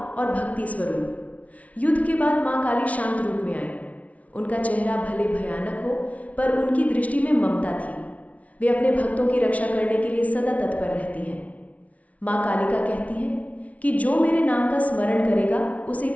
और भक्ति स्वरूप। युद्ध के बाद माँ काली शांत रूप में आई। उनका चेहरा भले भयानक हो, पर उनकी दृष्टि में ममता थी। वे अपने भक्तों की रक्षा करने के लिए सदा तत्पर रहती हैं। माँ कालिका कहती हैं कि जो मेरे नाम का स्मरण करेगा, उसे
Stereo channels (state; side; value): late; right; 0.067 ms